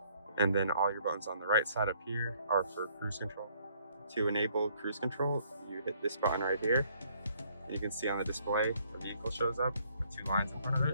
And then all your buttons on the right side up here are for cruise control. To enable cruise control, you hit this button right here. You can see on the display, the vehicle shows up with two lines in front of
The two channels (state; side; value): inverted; both; correlation -0.64